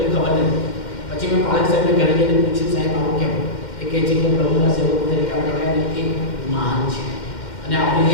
ખબર નથી. પછી મેં બાળક સાહેબને ઘરે જઈને પૂછ્યું, સાહેબ આવું કેમ? એ કહે છે કે પ્રભુના સેવકો તરીકે આપણે એક મહાન છે અને આપણું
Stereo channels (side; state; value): right; late; 2.1 ms